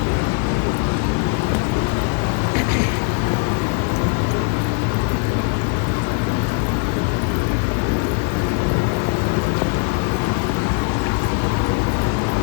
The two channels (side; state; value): right; quieter; 30.3 dB